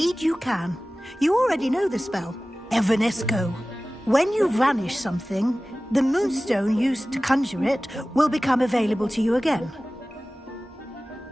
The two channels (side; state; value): both; normal; correlation 0.97